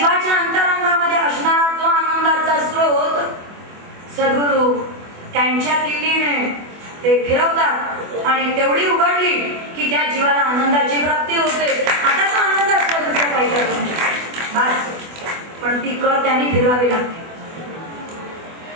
अंतरंगामध्ये असणारा जो आनंदाचा स्रोत सद्गुरू त्यांच्या किल्लीने ते फिरवतात आणि तेवढी उघडली की त्या जीवाला आनंदाची प्राप्ती होते. आता तो आनंद असतो दुसरा काही करतो बस, पण ती कळ त्यांनी फिरवावी लागते.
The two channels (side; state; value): left; late; 24 ms